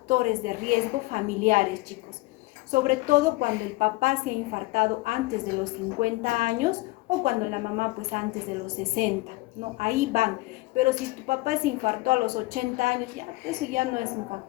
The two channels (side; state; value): right; quieter; 21.8 dB